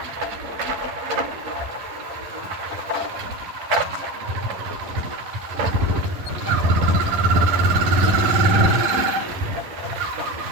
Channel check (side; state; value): left; late; 10 ms